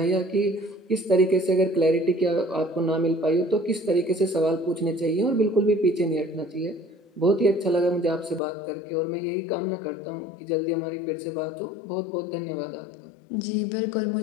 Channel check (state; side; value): drops out; right; at 8.4 s